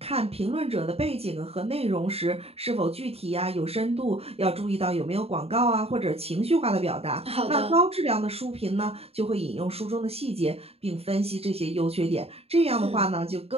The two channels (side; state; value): left; late; 0.29 ms